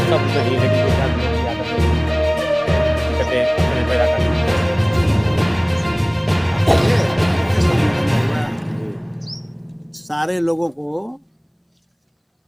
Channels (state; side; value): identical; both; correlation 1.00